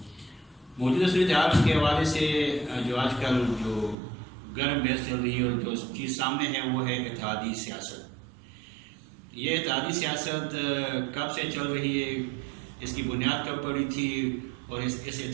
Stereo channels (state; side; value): drops out; left; at 4.0 s